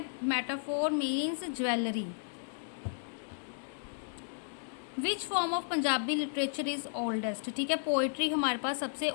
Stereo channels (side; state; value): right; silent; digital silence